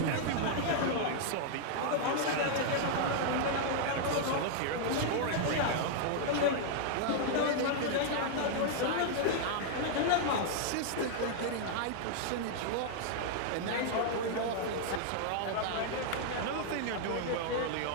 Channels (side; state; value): both; different; correlation -0.01